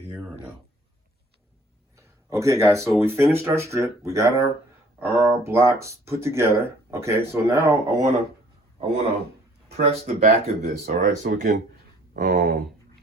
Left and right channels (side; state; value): both; normal; correlation 0.57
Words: or no? Okay, guys, so we finished our strip. We got our blocks put together, okay? So now I wanna press the back of this, all right? So we can,